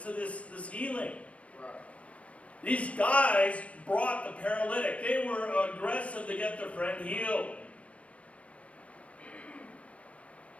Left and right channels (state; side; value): late; right; 0.064 ms